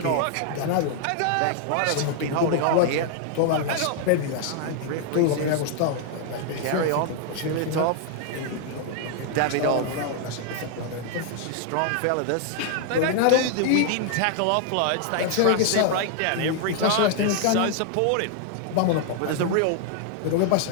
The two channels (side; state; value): both; different; correlation 0.00